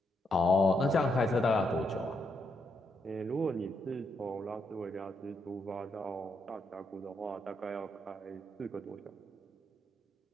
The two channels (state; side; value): normal; both; correlation 0.79